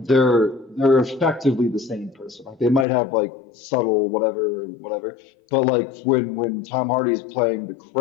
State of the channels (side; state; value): right; drops out; at 2.9 s